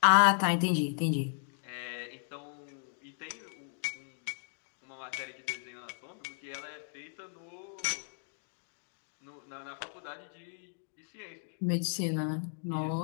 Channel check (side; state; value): right; silent; digital silence